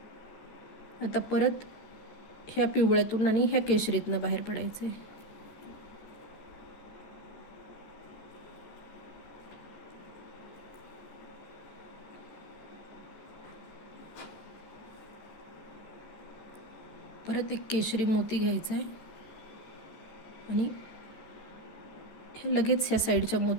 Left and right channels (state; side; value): late; right; 13 ms